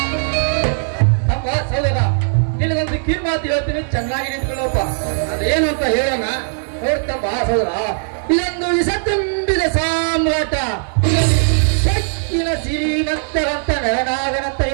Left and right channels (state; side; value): silent; left; digital silence